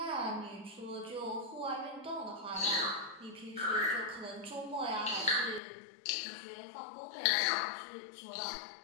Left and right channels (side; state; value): right; drops out; at 5.6 s